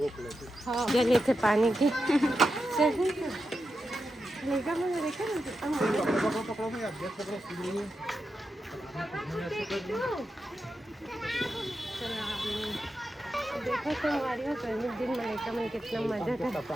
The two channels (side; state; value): both; normal; correlation 0.88